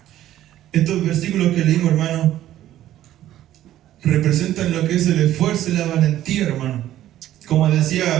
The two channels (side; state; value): left; quieter; 13.0 dB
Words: Estos versículos que leímos, hermano, representan lo que es el esfuerzo y la valentía, hermano. Como decía